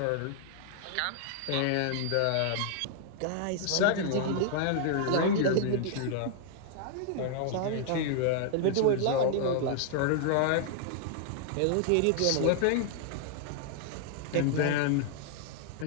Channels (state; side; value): different; both; correlation 0.00